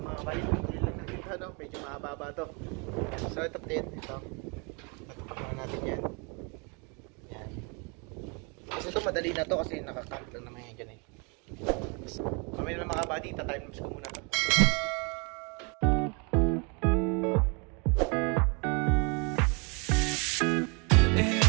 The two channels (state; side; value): quieter; left; 33.2 dB